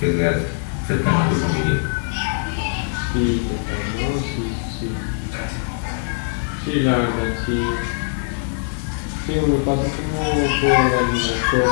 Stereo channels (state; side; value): silent; right; digital silence